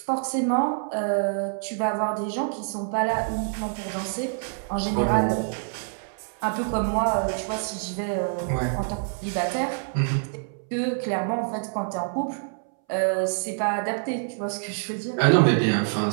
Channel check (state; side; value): silent; left; 61 dB below the other